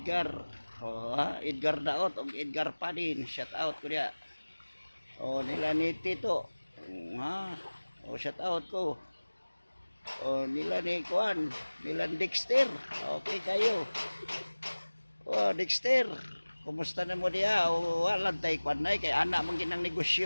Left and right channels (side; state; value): both; inverted; correlation -1.00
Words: Oh, ha? Edgar Daot o Edgar Padin. Shout out ko diha. Oh, nila ni Tito. Ha? Oh, shout out ko. Oh, nila ni Kuan, nila ni Dexter. Okay kayo. Oh, Dexter. Kumusta na mo diya? O walang tay kwan na kay anak mong ginang